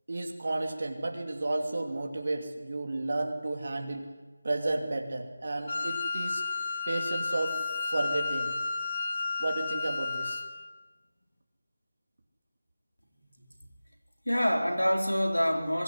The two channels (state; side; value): inverted; both; correlation -0.94